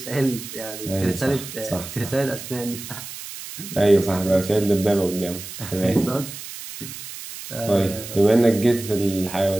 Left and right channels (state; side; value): noise; right; hiss, 11 dB below the sound